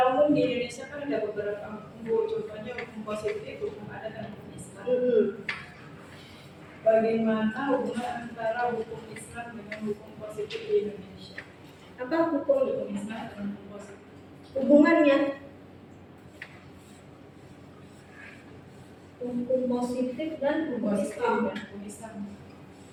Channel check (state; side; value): identical; both; correlation 1.00